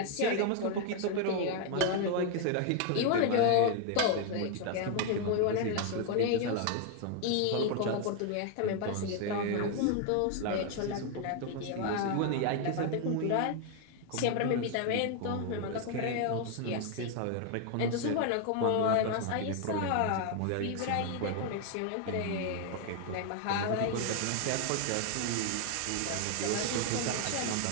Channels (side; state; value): both; different; correlation 0.00